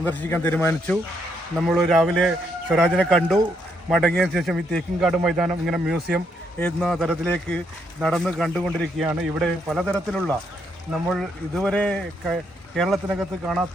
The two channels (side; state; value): both; normal; correlation 0.75